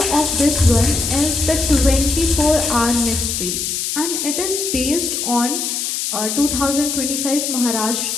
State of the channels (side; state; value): left; noise; hiss, 2 dB below the sound